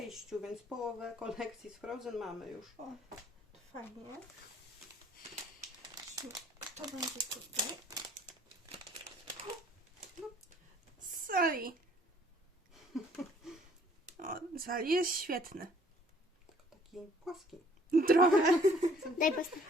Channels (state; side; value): normal; both; correlation 0.58